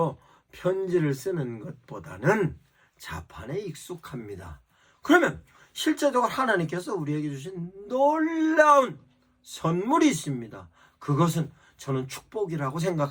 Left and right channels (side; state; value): both; identical; correlation 1.00